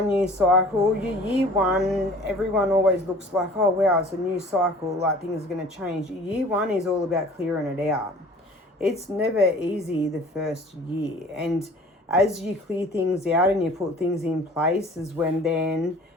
cycle, your year 1, everyone always looks like, oh wow, it's a new cycle, like things are going to change. Year 1 is all about clearing it out. It's never easy the first year, and as you clear things out and you put things in place is when then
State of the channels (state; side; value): normal; both; correlation 0.47